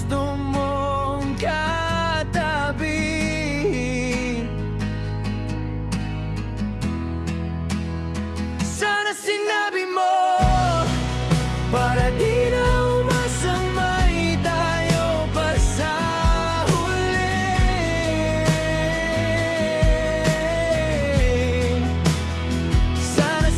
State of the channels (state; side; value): identical; both; correlation 1.00